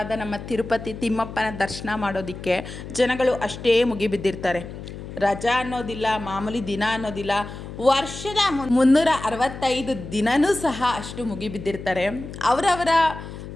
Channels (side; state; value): left; noise; hum, 11 dB below the sound